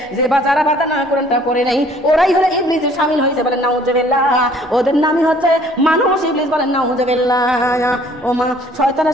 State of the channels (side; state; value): both; normal; correlation 0.57